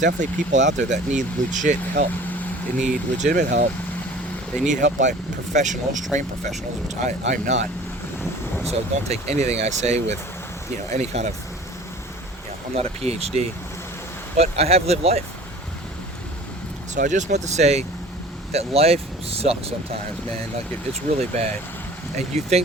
people out there that need legit help. They need legitimate help. They need help by professionals, trained professionals, which I'm not. So don't take anything I say with, any kind of, I'm not a PhD. But I have lived life. So I just want to say that life sucks sometimes, man. Like, it's really bad. And you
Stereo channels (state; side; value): normal; both; correlation 0.45